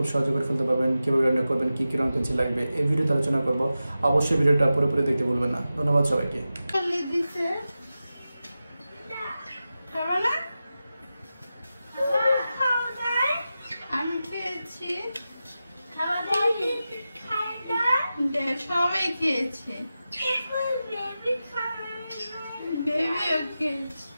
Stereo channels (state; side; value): inverted; both; correlation -0.93